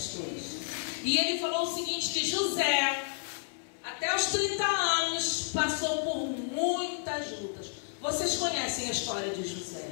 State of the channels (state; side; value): silent; right; 57 dB below the other